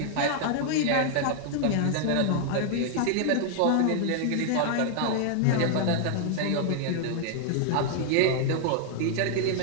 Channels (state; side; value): different; both; correlation 0.00